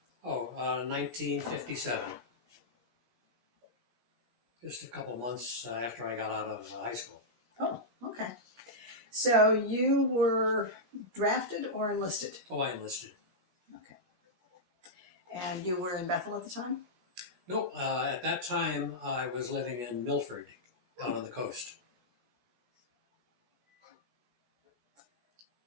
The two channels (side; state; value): left; late; 17 ms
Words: 1957. Just a couple months after I got out of high school. Oh, okay. So you were drafted or enlisted? Oh, I enlisted. Okay. And you were in Bethel at the time? No, at that time I was living in Milford, down on the coast.